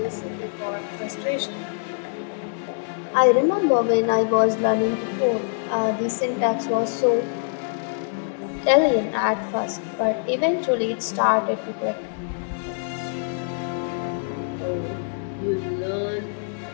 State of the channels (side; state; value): right; silent; 62 dB below the other